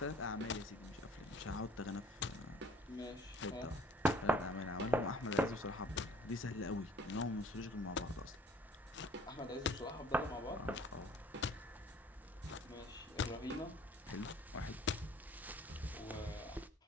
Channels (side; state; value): both; normal; correlation 0.54